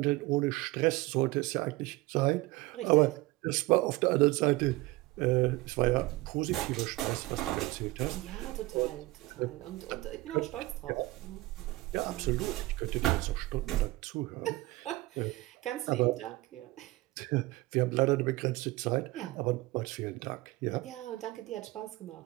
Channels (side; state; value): left; quieter; 20.1 dB